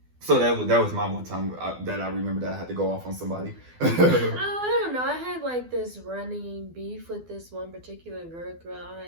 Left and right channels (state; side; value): late; left; 12 ms